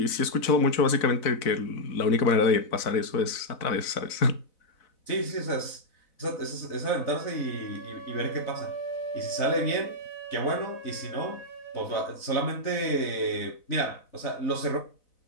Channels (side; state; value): right; late; 4.0 ms